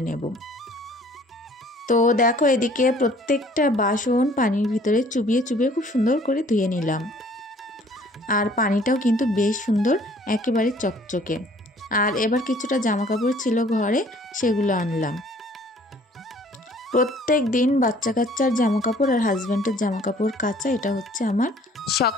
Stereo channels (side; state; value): both; normal; correlation 0.56